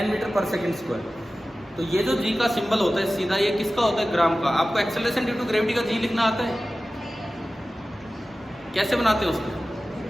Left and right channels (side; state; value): both; normal; correlation 0.96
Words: मीटर पर सेकेंड स्क्वायर। तो ये जो जी का सिंबल होता है सीधा, ये किसका होता है? ग्राम का। आपको एक्सेलरेशन ड्यू टू ग्रेविटी का जी लिखना आता है? कैसे बनाते हैं उसको?